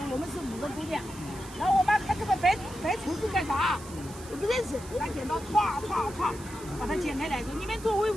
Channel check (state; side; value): noise; right; hiss, 17 dB below the sound